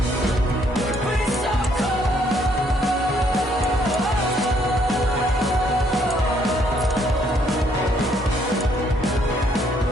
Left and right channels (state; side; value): normal; both; correlation 0.68